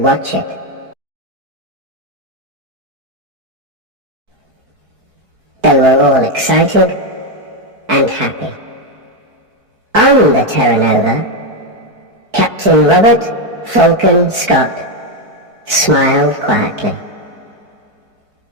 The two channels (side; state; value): left; late; 4.6 ms